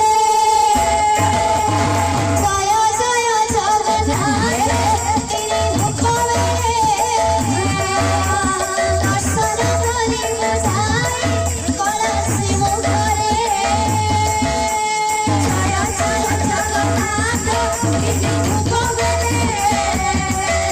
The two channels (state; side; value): identical; both; correlation 1.00